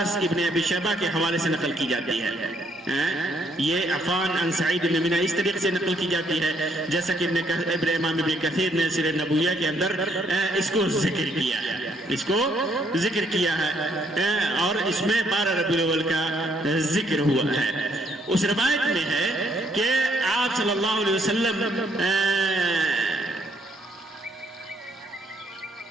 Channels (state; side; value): normal; both; correlation 0.70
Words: ابن ابی شیبہ کے حوالے سے نقل کی جاتی ہے۔ یہ عفان عن سعید ابن مینا اس طریقے سے نقل کی جاتی ہے جیسا کہ امام ابن کثیر نے سیرۃ النبویہ کے اندر اس کو ذکر کیا ہے، اور اس میں 12 ربیع الاول کا ذکر ہوا ہے۔ اس روایت میں ہے کہ آپ صلی اللہ علیہ وسلم